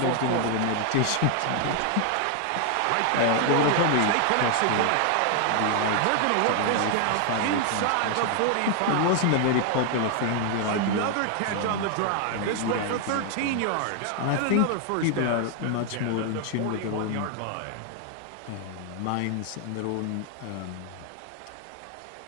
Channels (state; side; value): different; both; correlation 0.00